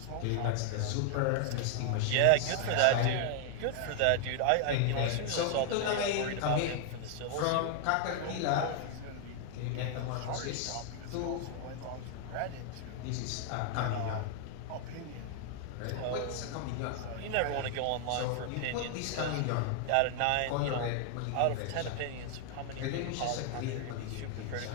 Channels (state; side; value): different; both; correlation 0.00